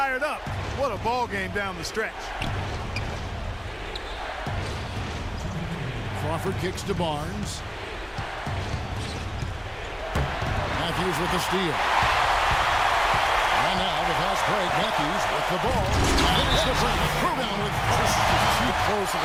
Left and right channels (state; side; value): identical; both; correlation 1.00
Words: up. What a ball game down the stretch. Crawford kicks to Barnes. Matthews with the steal. And now the fast break. Matthews with the ball. Finish the break. Rebound with This is too close of